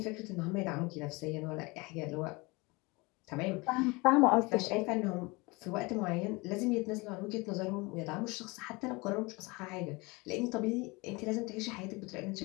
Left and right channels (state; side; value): quieter; right; 25.3 dB